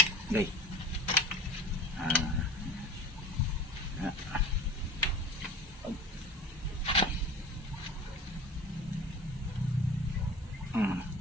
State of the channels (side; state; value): both; normal; correlation 0.37